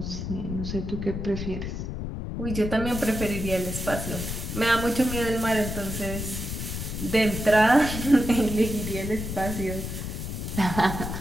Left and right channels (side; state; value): left; noise; rumble, 5 dB below the sound